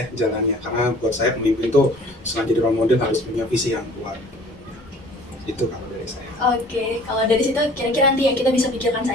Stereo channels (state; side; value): normal; both; correlation 0.49